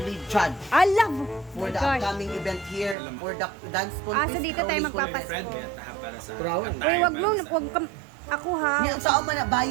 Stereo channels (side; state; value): left; drops out; at 3.0 s